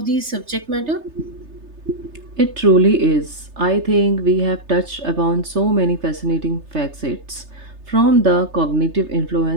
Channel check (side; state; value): left; late; 3.3 ms